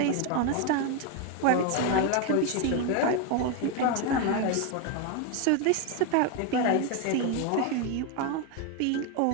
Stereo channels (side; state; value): both; different; correlation 0.02